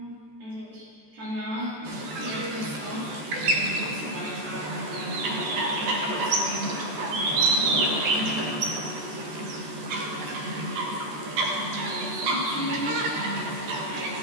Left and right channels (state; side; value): late; left; 14 ms